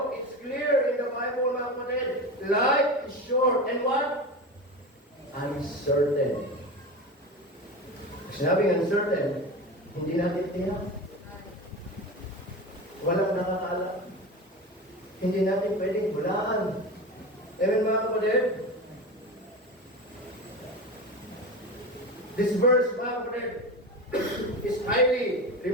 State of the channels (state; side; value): normal; both; correlation 0.26